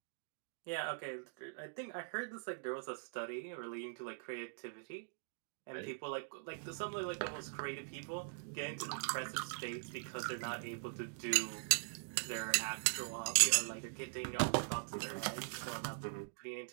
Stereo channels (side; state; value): left; silent; digital silence